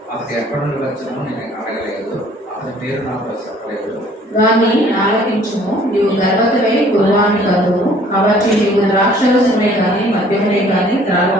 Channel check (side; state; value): both; normal; correlation 0.56